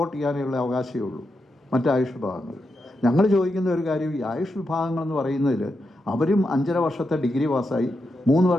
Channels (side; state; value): both; normal; correlation 0.86